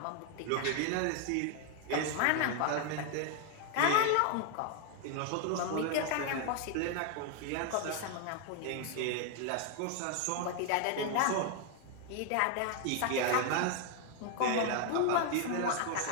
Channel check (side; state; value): both; different; correlation 0.00